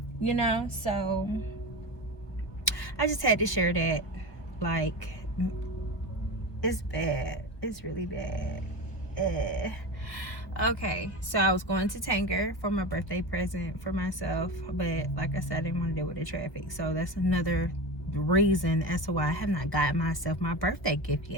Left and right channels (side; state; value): right; late; 1.2 ms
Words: So I just had to share that. It's bad. It's really bad. Okay, so I was going to Tanger for my birthday present for myself, but like I said, I didn't want to deal with the traffic. So that's another reason as to why I have not gotten myself my birthday gift